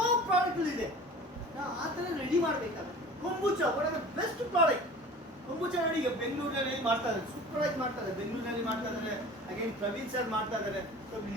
ಪ್ರಾಡಕ್ಟ್ಗಳಿದೆ. ನಾವು ಆ ಥರ ರೆಡಿ ಮಾಡಬೇಕಾಗುತ್ತೆ. Kombucha one of the best product. Kombucha ನೋಡಿ ಈಗ ಬೆಂಗಳೂರಲ್ಲಿ ಮಾಡ್ತಾ ಇದ್ದಾರೆ, ಸೂಪರ್ ಆಗಿ ಮಾಡ್ತಾ ಇದ್ದಾರೆ. ಬೆಂಗಳೂರಲ್ಲಿ ಮಾಡ್ತಾ ಇದ್ದಾರೆ, ಅಗೇನ್ ಪ್ರವೀಣ್ ಸರ್ ಮಾಡ್ತಾ ಇದ್ದಾರೆ. So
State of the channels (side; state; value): both; normal; correlation 0.41